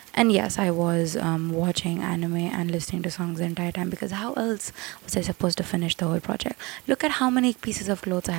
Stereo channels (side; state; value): left; quieter; 24.7 dB